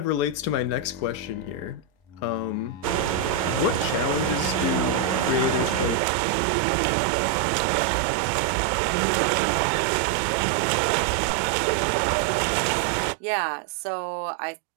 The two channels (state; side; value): drops out; left; at 6.0 s